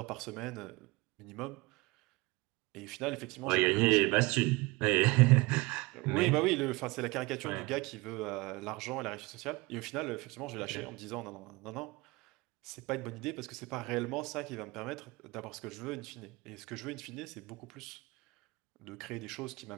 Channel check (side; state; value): left; quieter; 23.5 dB